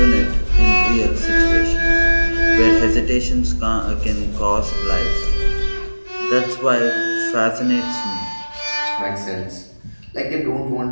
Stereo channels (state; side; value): inverted; both; correlation -1.00